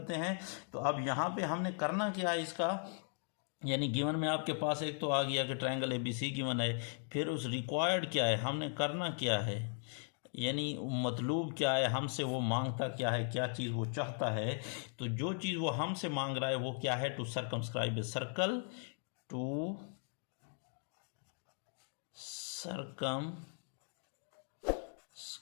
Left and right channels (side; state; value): right; silent; 52 dB below the other